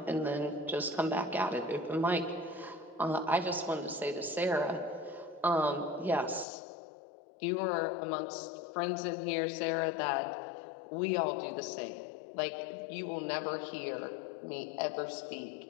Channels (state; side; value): drops out; right; at 6.5 s